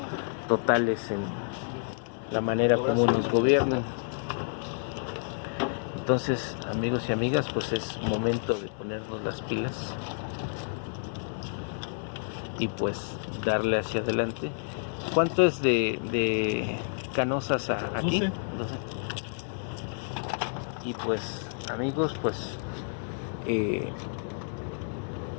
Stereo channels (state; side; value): silent; right; digital silence